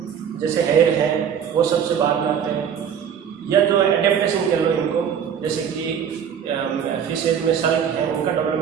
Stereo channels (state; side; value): quieter; left; 8.1 dB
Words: जैसे हेयर है वो सबसे बाद में आते हैं, या जो एडेप्टेशन कह लो इनको, जैसे कि फिशेज में सर्क हैं उनका